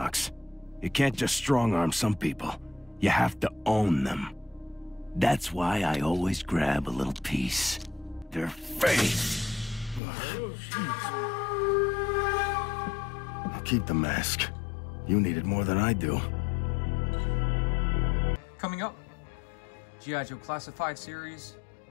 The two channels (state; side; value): drops out; right; at 10.0 s